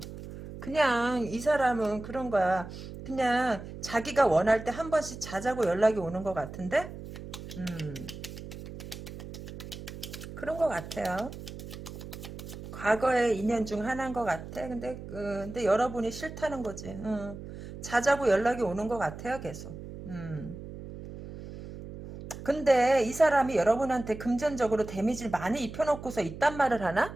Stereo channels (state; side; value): noise; right; hum, 12 dB below the sound